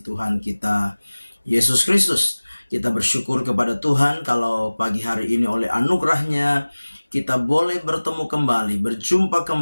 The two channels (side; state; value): both; inverted; correlation -1.00